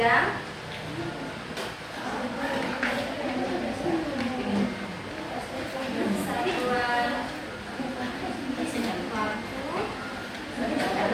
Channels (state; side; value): identical; both; correlation 1.00